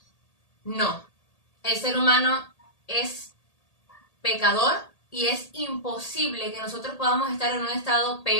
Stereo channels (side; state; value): right; late; 1.8 ms